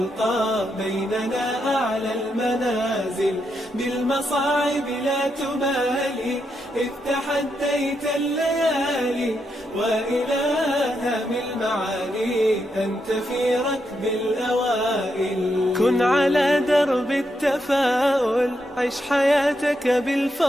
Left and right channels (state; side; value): normal; both; correlation 0.82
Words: بيننا أعلى المنازل. بالمصاعب لا تبالي، إذ تحديت الليالي، وإلى هام المعالي أنت في ركب الأوائل. كن على درب التفاؤل، عش حياتك